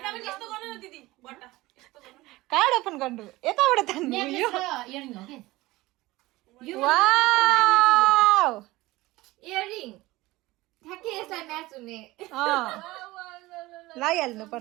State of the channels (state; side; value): quieter; left; 19.3 dB